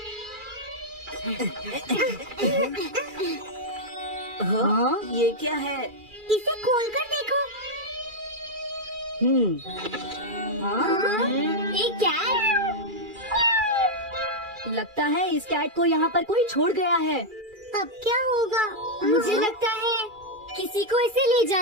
हाँ, ये क्या है? इसे खोलकर देखो। हाँ? एक कैट। लगता है इस कैट को यहाँ पर कोई छोड़ गया है। अब क्या होगा? मुझे लगता है किसी को इसे ले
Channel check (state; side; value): late; left; 2.3 ms